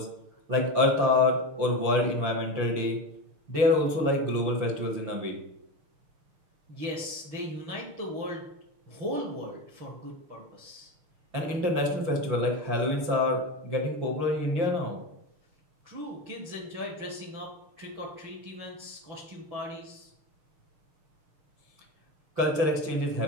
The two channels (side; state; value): left; late; 6.5 ms